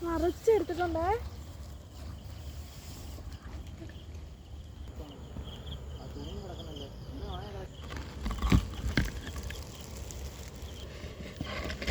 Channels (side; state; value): both; identical; correlation 1.00